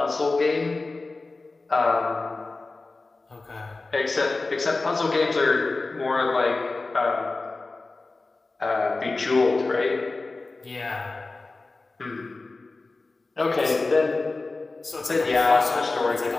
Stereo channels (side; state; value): right; quieter; 3.5 dB